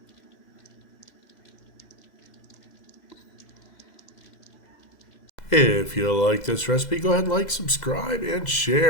If you like this recipe, go ahead and like, subscribe, and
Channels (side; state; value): right; late; 2.0 ms